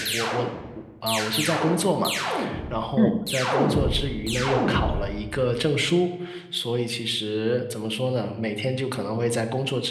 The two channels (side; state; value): both; identical; correlation 1.00